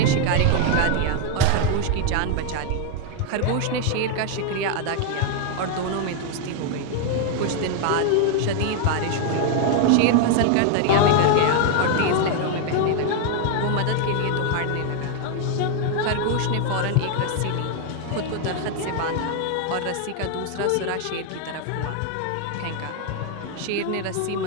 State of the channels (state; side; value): different; both; correlation 0.01